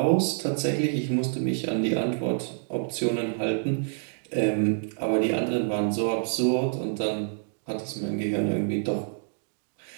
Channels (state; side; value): silent; left; digital silence